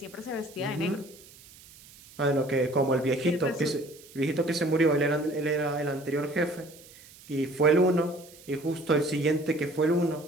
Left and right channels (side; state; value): right; noise; hiss, 22 dB below the sound